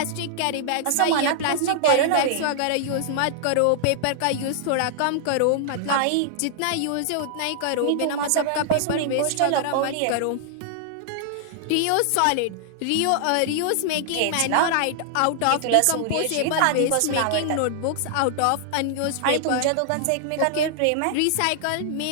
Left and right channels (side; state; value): both; different; correlation -0.01